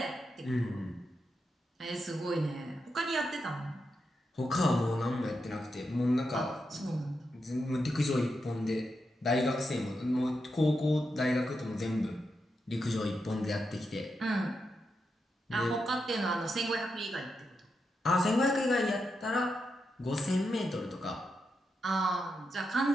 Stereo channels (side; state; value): both; normal; correlation 0.86